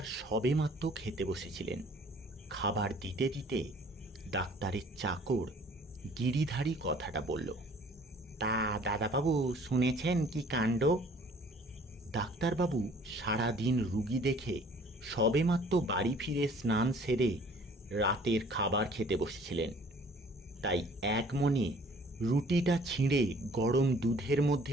সবেমাত্র খেতে বসেছিলেন। খাবার দিতে দিতে ডাক্তারের চাকর গিরিধারী কথাটা বলল, তা দাদাবাবু শুনেছেন কি কাণ্ড? ডাক্তারবাবু সারাদিন রুগী দেখে সবেমাত্র বাড়ি ফিরে স্নান সেরে রাতের খাবার খেতে বসেছিলেন। তাই এক মনে রুটিটা ছিঁড়ে গরম দুধের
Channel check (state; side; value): normal; both; correlation 0.54